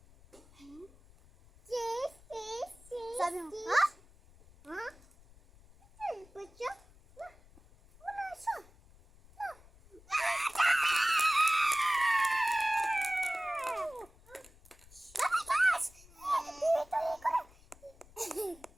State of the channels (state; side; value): noise; left; rumble, 25 dB below the sound